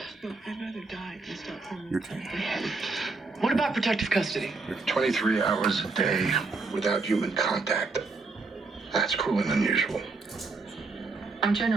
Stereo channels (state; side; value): quieter; left; 3.9 dB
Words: Look, I'd rather die than stop hormones. You're taking What about protective custody? 23 hours a day without human contact. That's cruel and unusual. I'm